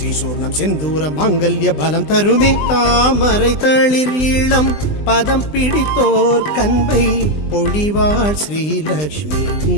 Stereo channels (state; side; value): late; right; 20 ms